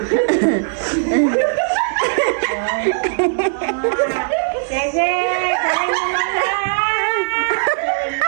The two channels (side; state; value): left; silent; digital silence